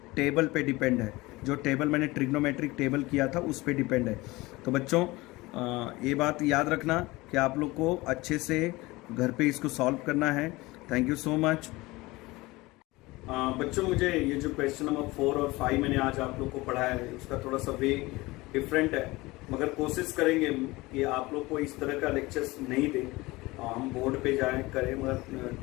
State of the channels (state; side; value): quieter; right; 21.2 dB